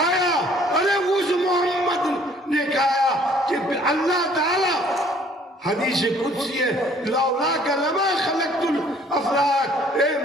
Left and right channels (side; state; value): both; normal; correlation 0.58